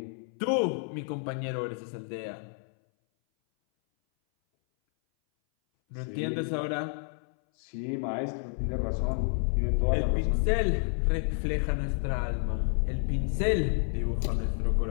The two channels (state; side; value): silent; right; 58 dB below the other